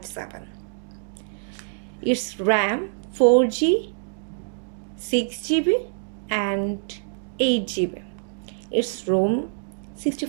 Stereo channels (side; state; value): left; silent; digital silence